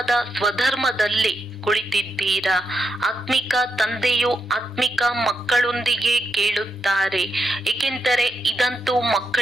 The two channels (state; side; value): normal; both; correlation 0.83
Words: ಸ್ವಧರ್ಮದಲ್ಲಿ ಕುಳಿತಿದ್ದೀರಾ. ಆತ್ಮಿಕ ತಂದೆಯು ಆತ್ಮಿಕ ಮಕ್ಕಳೊಂದಿಗೆ ಕೇಳುತ್ತಾರೆ, ಏಕೆಂದರೆ ಇದಂತೂ